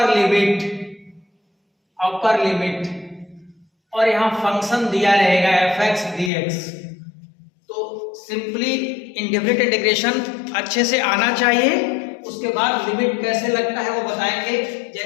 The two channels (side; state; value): right; drops out; at 6.3 s